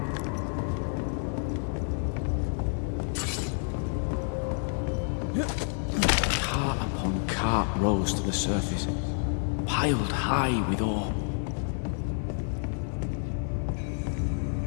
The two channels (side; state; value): right; silent; 59 dB below the other